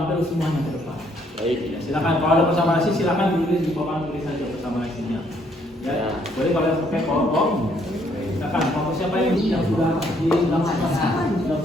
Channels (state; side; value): normal; both; correlation 0.68